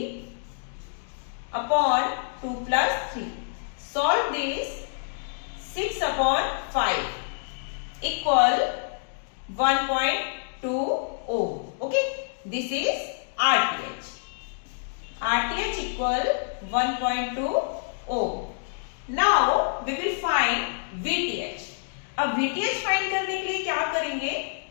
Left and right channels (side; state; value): right; silent; digital silence